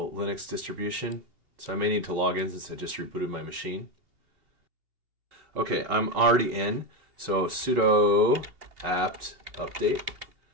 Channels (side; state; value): left; late; 2.8 ms